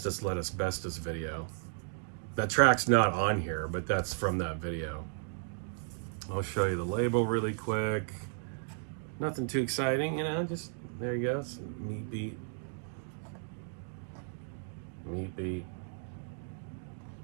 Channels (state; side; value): silent; left; digital silence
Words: Let Asbestos video. That track's not on here, but that's from that video. I'll show you the label really quick. Nothing too exciting, you know, just, there you go. It's Meat Beat. Meat Beat.